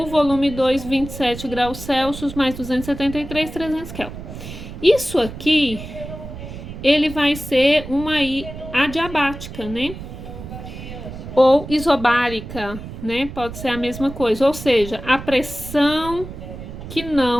volume 2, 27 graus Celsius, mais 273, 300 Kelvin. Isso aqui, ele vai ser uma adiabática, né? Ou isobárica, né? Pode ser a mesma coisa, ou seja, a pressão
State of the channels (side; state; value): right; noise; rumble, 11 dB below the sound